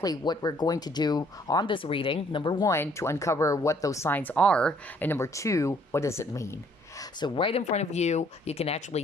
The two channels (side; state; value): both; normal; correlation 0.63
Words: what we're going to do on this reading. Number one, to uncover what those signs are. And number two, what does it mean? So right in front of you, you can